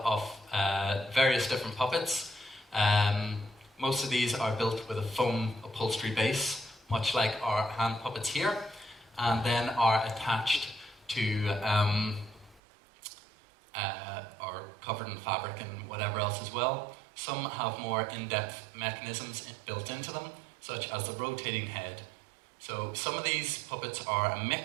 of various different puppets. Most of these are built with a foam upholstery base, much like our hand puppets here, and then are attached to or covered in fabric and whatever else as well. Some have more in-depth mechanisms built into them, such as the rotating head. So some of these puppets are a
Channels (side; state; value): left; drops out; at 12.6 s